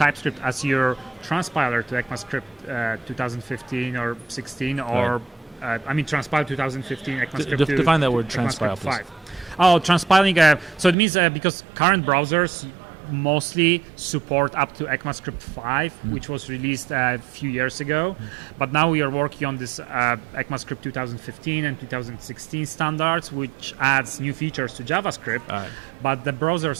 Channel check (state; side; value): drops out; left; at 11.0 s